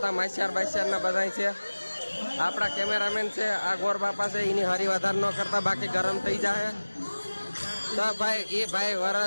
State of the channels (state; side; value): inverted; both; correlation -1.00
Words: માસ્યાર બાસ્યારના બધા છે. આપણા કેમેરામેન છે આ ગોર બાપા છે. એની હરી વધારે ન કરતા, બાકી ગરમ થઈ જાય. તો ભાઈ એ ભાઈ